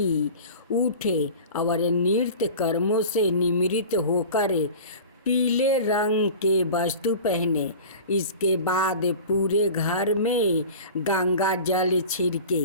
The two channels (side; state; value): both; inverted; correlation -0.37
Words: उठे और नित्य कर्मों से निवृत्त होकर पीले रंग के वस्त्र पहने। इसके बाद पूरे घर में गंगा जल छिड़के।